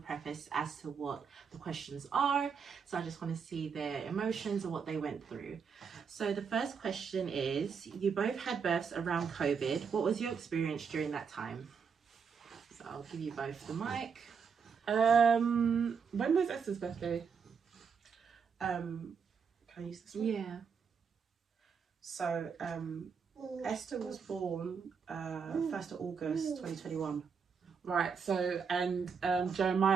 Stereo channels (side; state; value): left; quieter; 6.2 dB